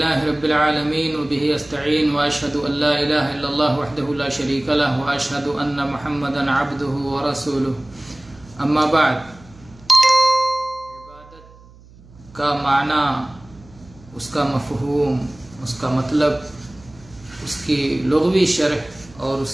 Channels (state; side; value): noise; right; hum, 23 dB below the sound